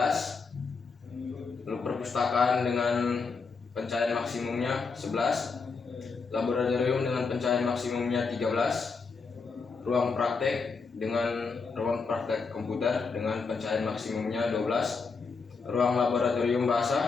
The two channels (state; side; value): quieter; right; 4.8 dB